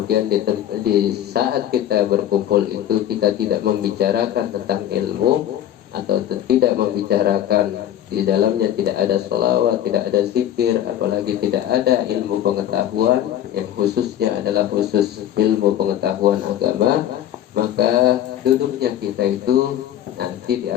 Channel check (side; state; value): right; quieter; 11.3 dB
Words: di saat kita berkumpul itu kita tidak membicarakan tentang ilmu atau tidak membicarakan di dalamnya, tidak ada sholawat, tidak ada zikir, apalagi tidak ada ilmu pengetahuan yang khususnya adalah khusus ilmu pengetahuan agama, maka duduknya kita itu nanti